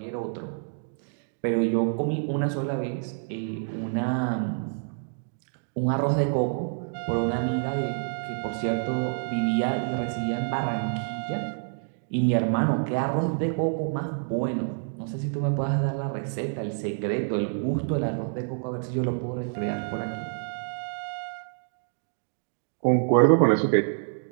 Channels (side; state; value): left; silent; digital silence